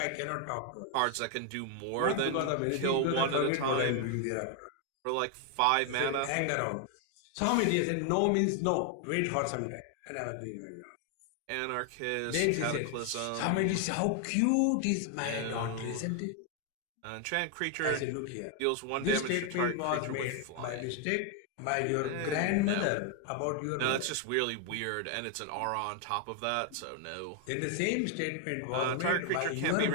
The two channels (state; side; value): different; both; correlation 0.01